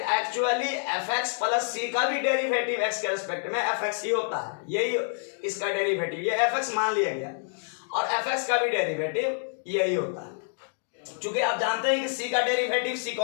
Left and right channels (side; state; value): right; silent; digital silence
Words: fx प्लस c का भी डेरिवेटिव x के रेस्पेक्ट में fx ही होता है, यही इसका डेरिवेटिव, ये fx मान लिया गया, और fx का भी डेरिवेटिव यही होता है। क्योंकि आप जानते हैं कि c का डेरिवेटिव c